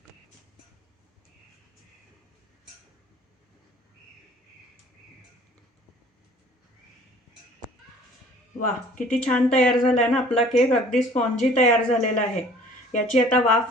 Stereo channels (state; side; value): normal; both; correlation 0.52